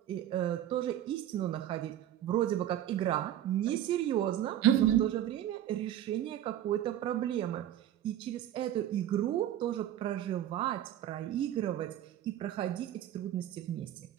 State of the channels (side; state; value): left; quieter; 11.7 dB